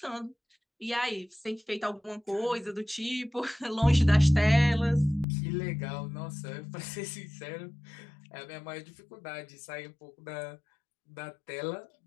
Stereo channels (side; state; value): right; drops out; at 5.2 s